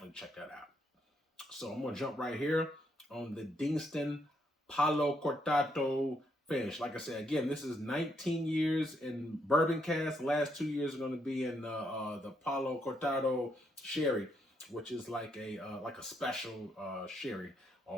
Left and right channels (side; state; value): both; normal; correlation 0.76